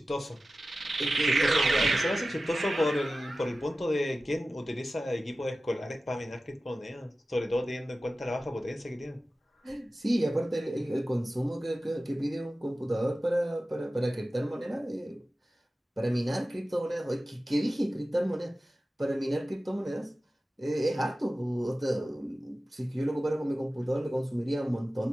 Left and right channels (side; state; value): both; normal; correlation 0.95